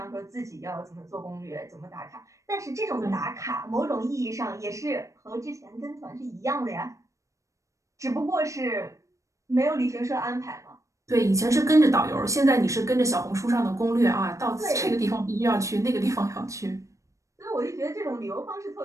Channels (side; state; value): left; late; 0.15 ms